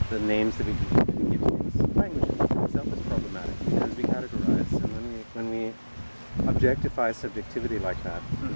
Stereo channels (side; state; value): both; inverted; correlation -1.00